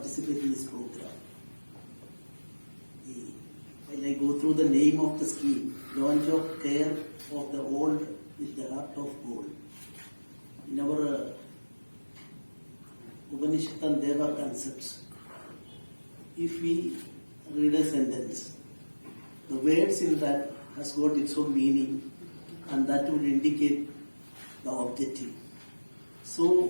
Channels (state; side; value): inverted; both; correlation -1.00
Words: in this program. While I go through the name of the scheme, Launch of Care of the Old with the Heart of Gold. In our Upanishad and Deva concepts, if we read a sentence, the words in that has got its own meaning, and that would indicate the objective.